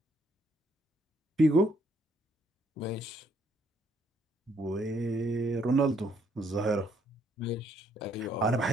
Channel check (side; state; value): both; normal; correlation 0.69